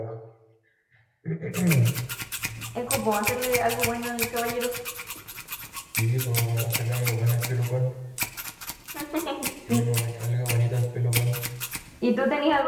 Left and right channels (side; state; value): both; identical; correlation 1.00